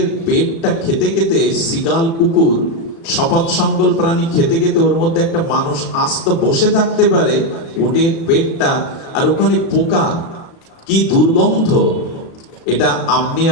পেটটা খেতে খেতে সিগাল কুকুর, শপথ সঙ্গল প্রাণী খেতে খেতে ওর মধ্যে একটা মানুষ আস্ত বসে থাকতে পারে, উটের পেটটা, আর ওখানে পোকা, কি দুর্গন্ধ! এটা আপনি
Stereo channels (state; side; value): late; right; 36 ms